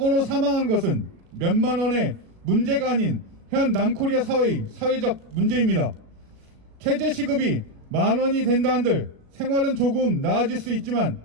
사망한 것은 몇만 원의 문제가 아닌 현 남코리아 사회의 사회적 문제입니다. 최저시급이 10,000원이 된다 한들 생활은 조금 나아질 수 있지만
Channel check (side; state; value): left; late; 37 ms